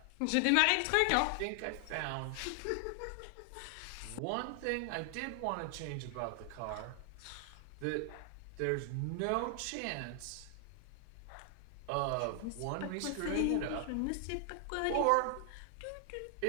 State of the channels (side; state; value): both; different; correlation 0.00